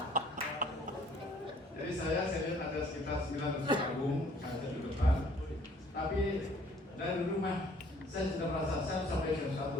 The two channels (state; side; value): normal; both; correlation 0.58